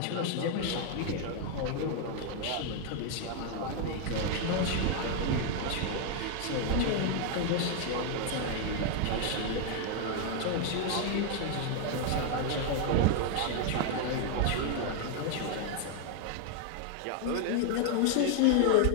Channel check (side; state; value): both; different; correlation 0.00